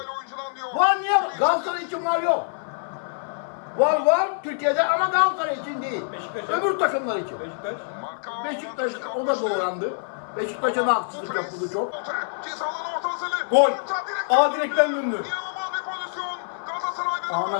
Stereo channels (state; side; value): silent; right; 57 dB below the other